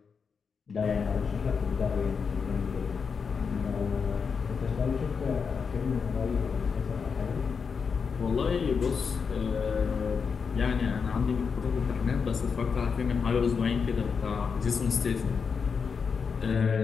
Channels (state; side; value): quieter; right; 5.8 dB